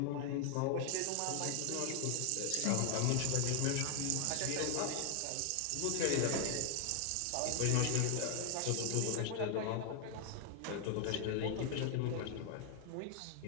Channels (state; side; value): different; both; correlation 0.00